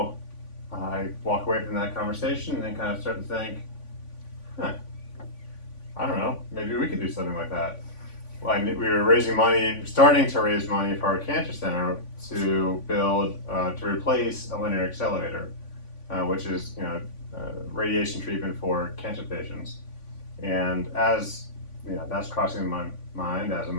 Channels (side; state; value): right; late; 3.5 ms